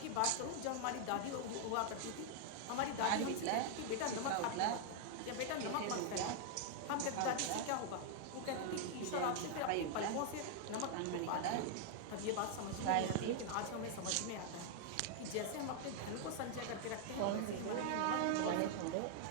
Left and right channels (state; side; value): different; both; correlation 0.00